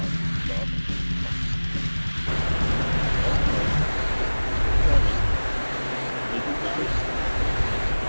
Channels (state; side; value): inverted; both; correlation -1.00